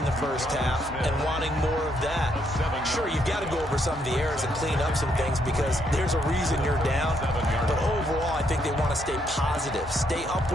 the first half and wanting more of that. Sure, you've got to go over some of the errors and clean up some things because there's a reason you're down. But overall, I think they want to stay positive, stay up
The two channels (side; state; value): both; normal; correlation 0.74